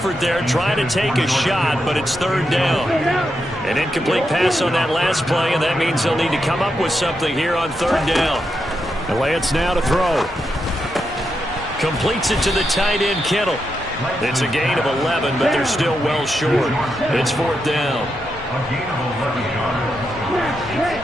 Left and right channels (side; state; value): both; normal; correlation 0.85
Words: there, trying to take a shot, but it's third down. An incomplete pass on that last play, and that means they'll need to come up with something here on third down. And Lance now to throw. Completes it to the tight end, Kittle. It's a gain of 11, but they're still well short. It's fourth down. A gain of 11